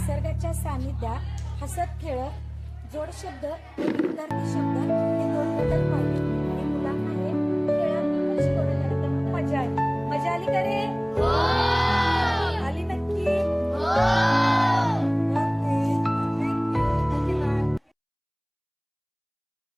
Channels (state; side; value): identical; both; correlation 1.00